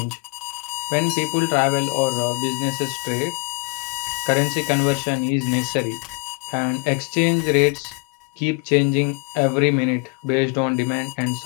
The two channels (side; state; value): right; quieter; 29.5 dB